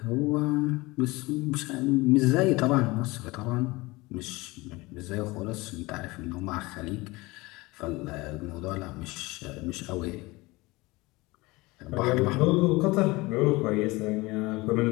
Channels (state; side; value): quieter; right; 22.3 dB